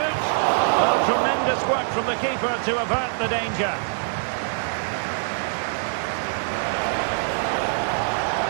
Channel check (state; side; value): silent; left; digital silence